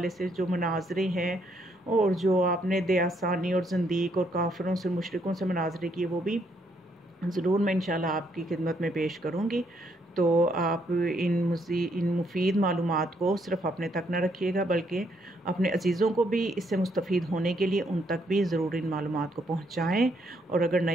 سے جو مناظرے ہیں اور جو آپ نے دیاسانی اور زندیق اور کافروں سے مشرکوں سے مناظرے کیے وہ بھی ضرور میں انشاءاللہ آپ کی خدمت میں پیش کروں گی۔ تو آپ ان مفید معلومات کو صرف اپنے تک نہ رکھیے گا، بلکہ اپنے عزیزوں کو بھی اس سے مستفید ہونے کے لیے ان تک بھی ضرور ان معلومات کو پہنچائیں، اور اگر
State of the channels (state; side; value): normal; both; correlation 0.73